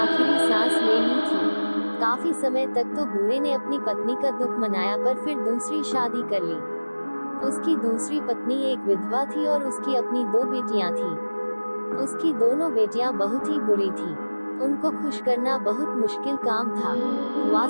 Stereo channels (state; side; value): inverted; both; correlation -1.00